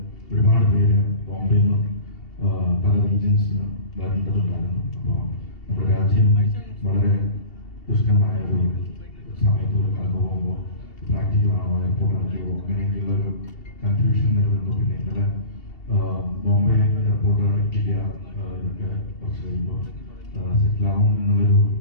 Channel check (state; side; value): late; right; 2.7 ms